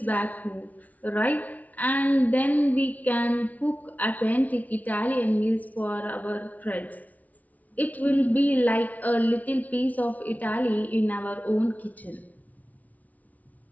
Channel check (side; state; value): right; late; 0.075 ms